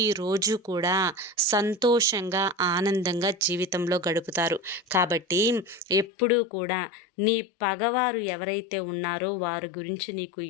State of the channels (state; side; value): drops out; right; at 6.1 s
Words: కూడా సంతోషంగా, ఆనందంగా జీవితంలో గడుపుతారు. కాబట్టి ఎప్పుడూ కూడా నీ పగవారు ఎవరైతే ఉన్నారో వారి గురించి నీకు